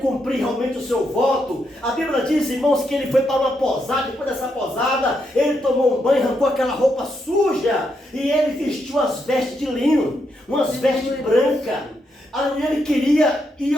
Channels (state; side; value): normal; both; correlation 0.80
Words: cumprir realmente o seu voto, a Bíblia diz, irmãos, que ele foi para uma posada. Depois dessa posada, ele tomou um banho, arrancou aquela roupa suja e ele vestiu as vestes de linho, umas vestes brancas. Ali ele queria ir